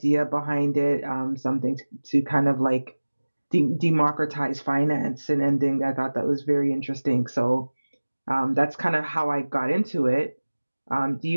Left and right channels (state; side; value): inverted; both; correlation -1.00